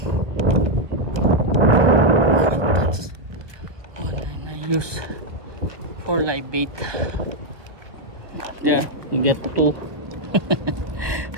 Use for live bait. There, you get two.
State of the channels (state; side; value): late; left; 1.4 ms